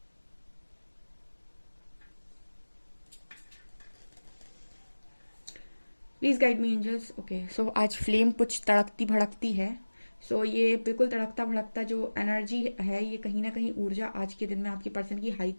Please guide me angels. Okay, so आज फ्लेम कुछ तड़कती भड़कती है। सो ये बिल्कुल तड़कता भड़कता जो एनर्जी है, ये कहीं ना कहीं ऊर्जा आज के दिन में आपके पर्सन की हाई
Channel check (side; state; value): both; inverted; correlation -1.00